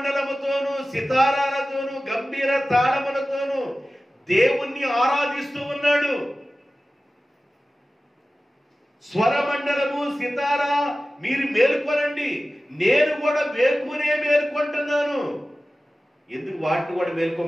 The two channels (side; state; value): both; normal; correlation 0.96